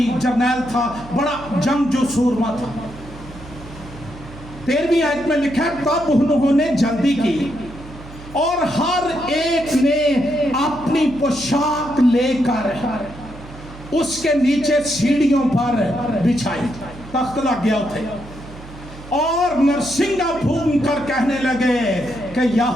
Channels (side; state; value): right; noise; hum, 16 dB below the sound